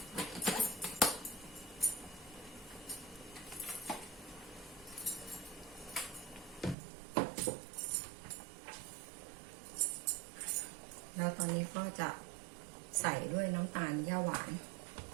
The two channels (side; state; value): left; drops out; at 6.8 s